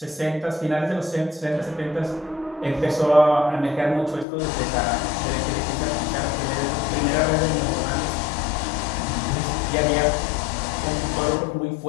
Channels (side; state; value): right; drops out; at 4.2 s